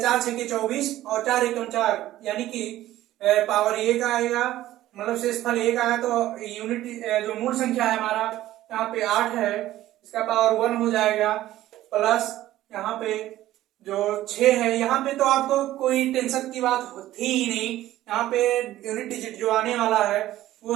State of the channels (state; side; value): quieter; left; 14.5 dB